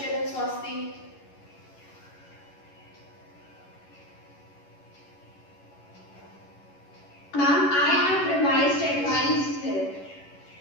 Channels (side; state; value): right; late; 11 ms